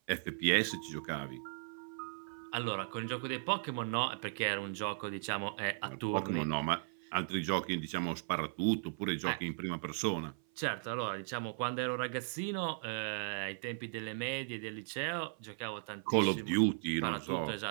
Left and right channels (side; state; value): left; silent; 53 dB below the other